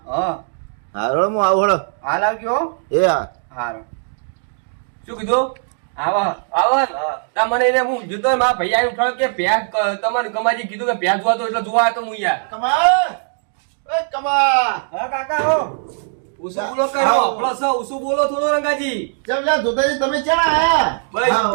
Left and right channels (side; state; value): left; silent; 66 dB below the other